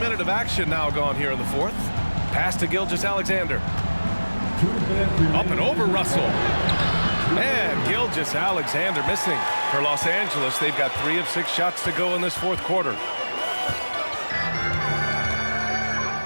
of action now gone here in the fourth. Pass to Gilgeous-Alexander. Up and over Russell. And Gilgeous-Alexander missing. For Los Angeles, they've got 3 of 6 shots to go in this fourth quarter.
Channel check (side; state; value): both; inverted; correlation -1.00